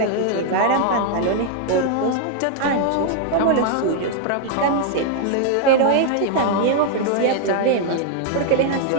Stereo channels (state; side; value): different; both; correlation -0.01